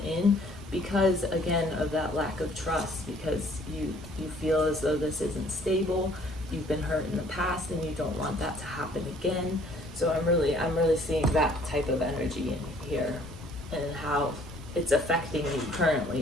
in because, again, of that lack of trust, because you feel as though this isn't stable, you've been hurt in the past, and you don't want that to happen again. So I'm really seeing that type of energy in here and how it's affecting you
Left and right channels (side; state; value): both; normal; correlation 0.59